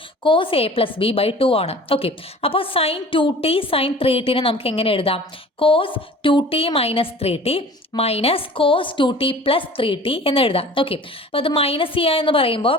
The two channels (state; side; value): normal; both; correlation 0.44